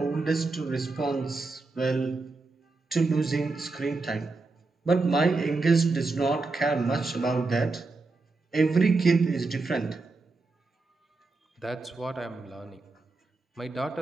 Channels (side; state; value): left; quieter; 3.6 dB